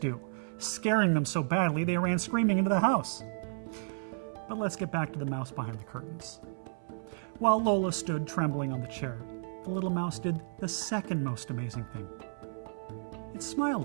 scaring them so badly they ran screaming into the house. But let's get back to the mouse behind the curtains. While Lola stood trembling on the chair, the little mouse did the second most amazing thing. It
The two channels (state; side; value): silent; left; 56 dB below the other